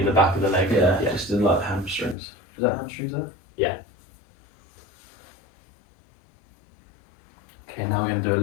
the back of the leg? Yeah, just in like hamstrings. Is that hamstrings there? Yeah. Okay, now we're going to do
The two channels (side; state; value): right; drops out; at 2.1 s